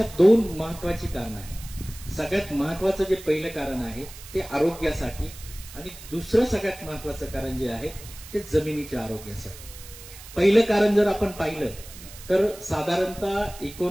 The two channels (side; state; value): right; noise; hiss, 16 dB below the sound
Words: 2 महत्वाची कारणं आहेत. सगळ्यात महत्वाचं जे पहिलं कारण आहे ते आरोग्यासाठी आणि दुसरं सगळ्यात महत्वाचं कारण जे आहे ते जमिनीच्या आरोग्यासाठी. पहिलं कारण जर आपण पाहिलं तर साधारणतः